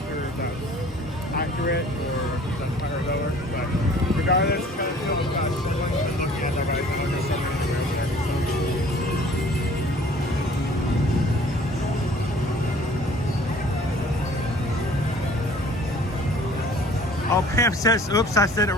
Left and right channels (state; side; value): normal; both; correlation 0.52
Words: sure if that's accurate or if that's higher or lower. But regardless, kind of feel about someone looking at that right now. There's so many over there. Oh, Pam says, oops, I said it